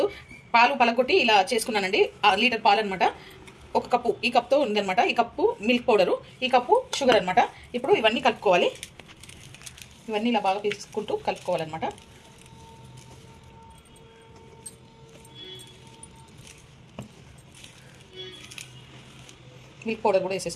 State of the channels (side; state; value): both; identical; correlation 1.00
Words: పాలు పలకొట్టి ఇలా చేసుకున్నానండి. లీటర్ పాలు అనమాట. ఒక కప్పు, ఈ కప్తో ఉందనమాట. ఈ కప్పు మిల్క్ పౌడరు, ఈ కప్పు షుగర్ అనమాట. ఇప్పుడు ఇవన్నీ కలుపుకోవాలి. ఇవన్నీ ఇలా బాగా తీసుకుంటూ కలుపుకోవాలన్నమాట. మిల్క్ పౌడర్ కూడా